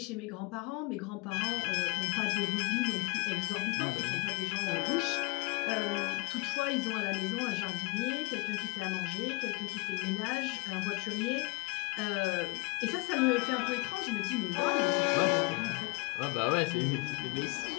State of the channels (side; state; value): right; quieter; 26.9 dB